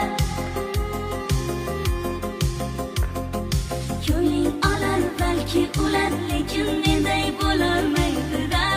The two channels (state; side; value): identical; both; correlation 1.00